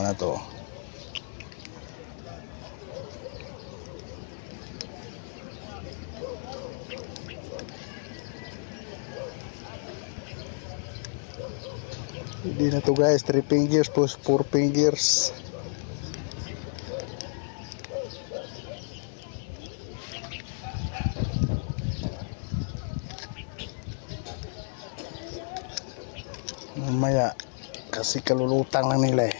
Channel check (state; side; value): silent; right; 57 dB below the other